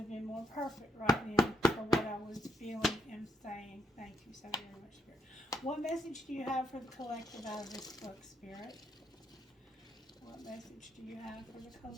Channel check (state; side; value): normal; both; correlation 0.75